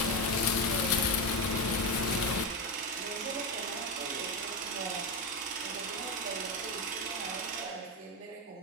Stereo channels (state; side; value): normal; both; correlation 0.11